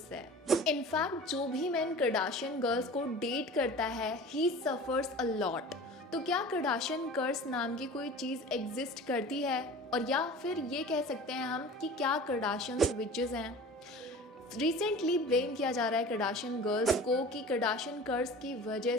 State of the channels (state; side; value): normal; both; correlation 0.39